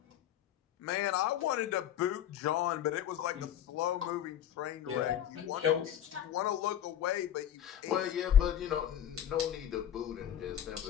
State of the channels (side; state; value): right; quieter; 10.3 dB